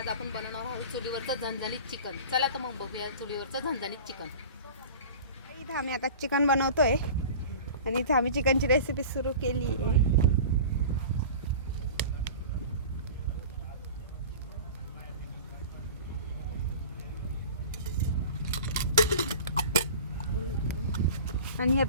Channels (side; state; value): both; inverted; correlation -0.38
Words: आपण बनवणार आहोत चुलीवरचं झणझणीत चिकन. चला तर मग बघूया चुलीवरचं झणझणीत चिकन. इथं आम्ही आता चिकन बनवतोय आणि इथं आम्ही चिकनची रेसिपी सुरू केली आहे. आणि हे